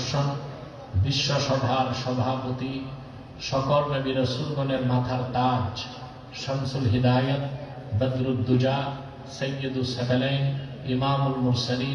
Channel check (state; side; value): identical; both; correlation 1.00